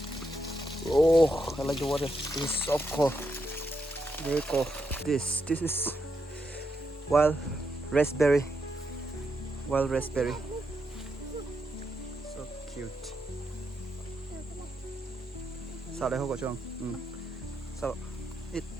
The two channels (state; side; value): normal; both; correlation 0.82